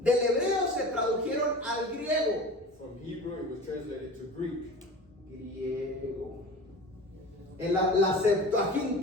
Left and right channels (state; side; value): normal; both; correlation 0.36